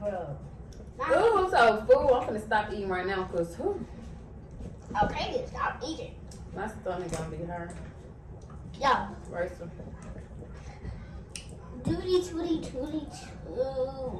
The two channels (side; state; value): both; identical; correlation 1.00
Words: Ooh, I'm so full. I'm finna stop eating right now because Okay, then stop eating. my stomach gonna be hurt. Yeah. Right, so. Tootie.